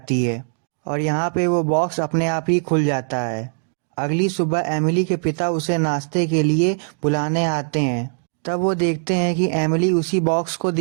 है और यहाँ पे वो बॉक्स अपने आप ही खुल जाता है। अगली सुबह एमिली के पिता उसे नाश्ते के लिए बुलाने आते हैं। तब वो देखते हैं कि एमिली उसी बॉक्स को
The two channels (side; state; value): left; silent; 64 dB below the other